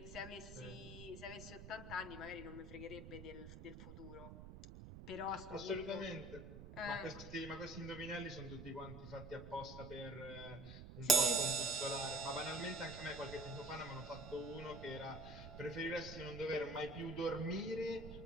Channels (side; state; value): right; noise; rumble, 12 dB below the sound